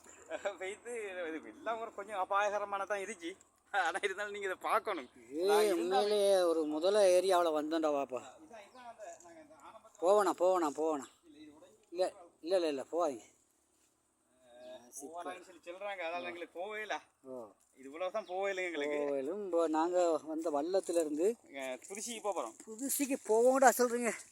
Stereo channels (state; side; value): identical; both; correlation 1.00